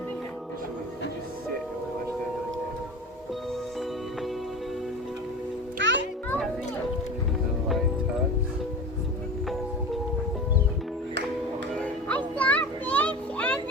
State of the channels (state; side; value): normal; both; correlation 0.33